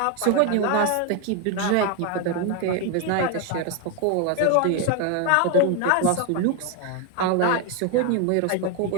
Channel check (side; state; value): both; different; correlation 0.01